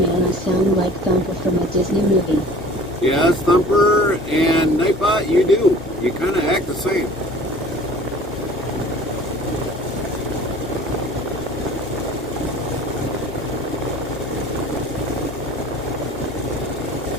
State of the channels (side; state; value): both; normal; correlation 0.46